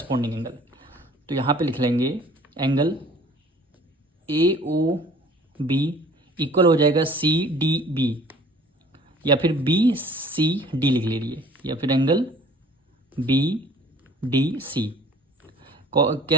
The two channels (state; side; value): normal; both; correlation 0.51